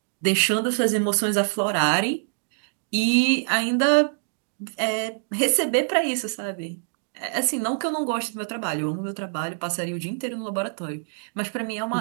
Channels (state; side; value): silent; left; digital silence